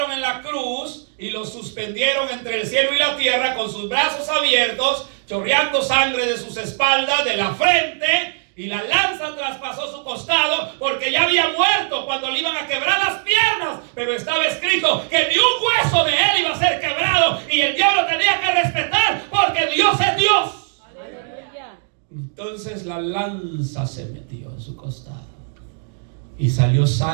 en la cruz y lo suspendieron entre el cielo y la tierra, con sus brazos abiertos, chorreando sangre de sus espaldas, de la frente, y la lanza traspasó su costado, porque ya había muerto cuando le iban a quebrar las piernas. Pero estaba escrito que ni un hueso de él iba a ser quebrado, y el diablo tenía que respetar, porque Dios es Dios. Entonces la lanza se metió en su costado y salió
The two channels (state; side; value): silent; left; digital silence